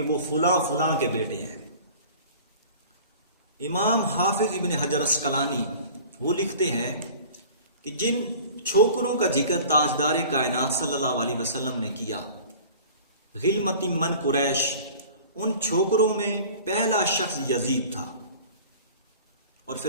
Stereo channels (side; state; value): both; inverted; correlation -0.44